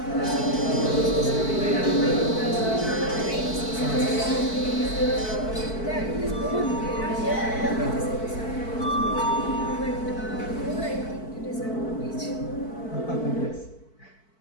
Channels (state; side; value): late; right; 4.5 ms